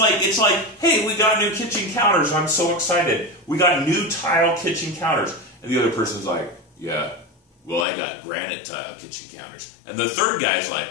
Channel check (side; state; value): right; drops out; at 7.9 s